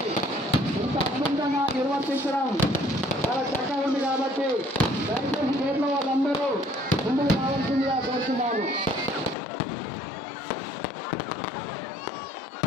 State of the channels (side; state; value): right; drops out; at 9.3 s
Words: ఇంత అద్భుతంగా నిర్వర్తించడం చాలా చక్కగా ఉంది కాబట్టి దయచేసి గేట్లో వాళ్ళందరూ ముందుకు రావాల్సిందిగా కోరుతున్నాను.